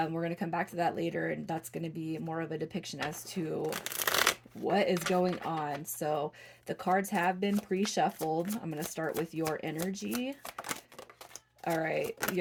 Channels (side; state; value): both; identical; correlation 1.00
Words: going to come back to that later, and that's going to be more of a depiction as to what is going on. So the cards have been pre-shuffled. I'm going to start with your energy. All right,